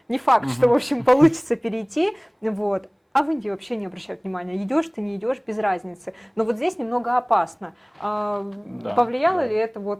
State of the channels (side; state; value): both; identical; correlation 1.00